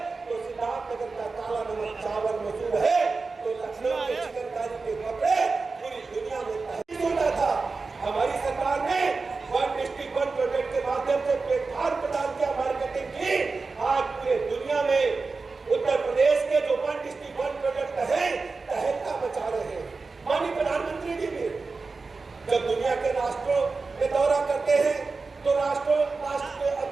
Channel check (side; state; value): left; quieter; 4.1 dB